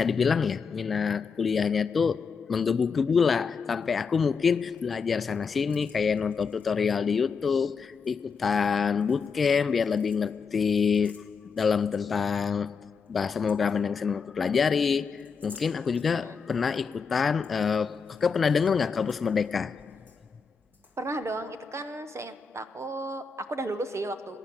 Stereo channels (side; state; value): right; quieter; 5.4 dB